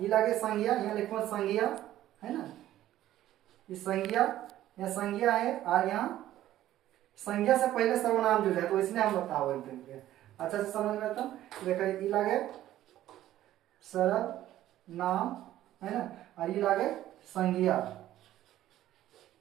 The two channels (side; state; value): left; quieter; 13.5 dB